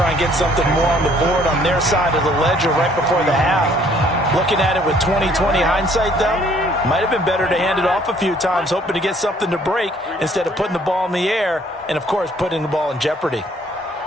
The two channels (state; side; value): normal; both; correlation 0.61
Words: and get something more on the board on their side of the ledger right before the half. Looking at it with 20/20 hindsight, though, might have been better to hand it off a few times, hoping to get something to break instead of putting the ball in the air and, of course, putting the ball in jeopardy.